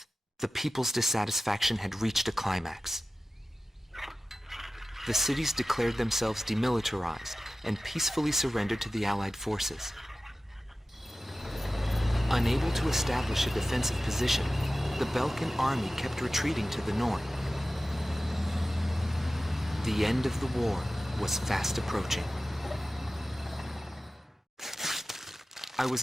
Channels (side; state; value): both; normal; correlation 0.95